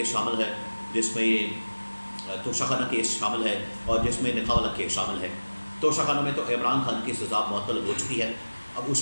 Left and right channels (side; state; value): both; inverted; correlation -1.00